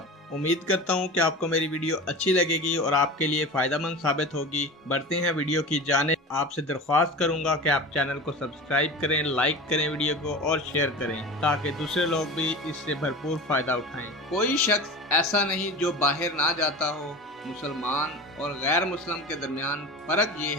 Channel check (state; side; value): normal; both; correlation 0.32